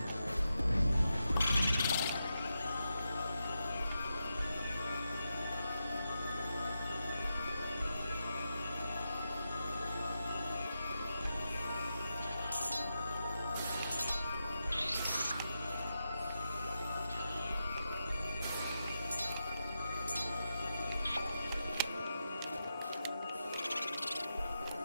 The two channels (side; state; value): both; inverted; correlation -0.87